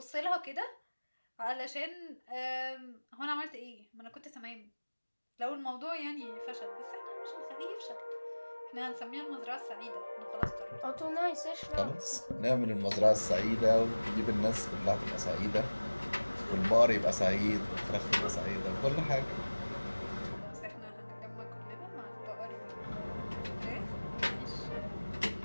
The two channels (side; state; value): both; inverted; correlation -1.00